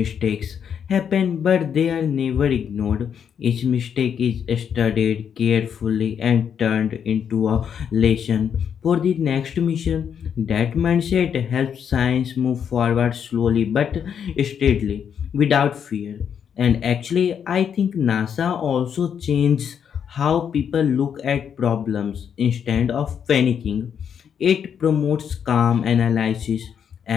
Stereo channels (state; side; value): quieter; right; 7.9 dB